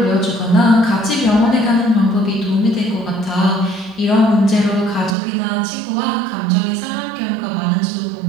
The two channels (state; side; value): drops out; left; at 5.2 s